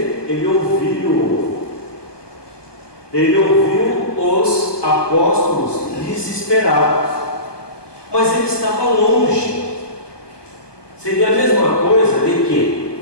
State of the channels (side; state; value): right; late; 1.2 ms